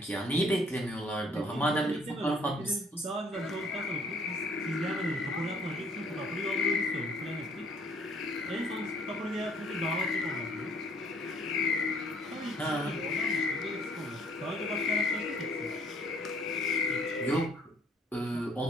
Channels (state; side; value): normal; both; correlation 0.60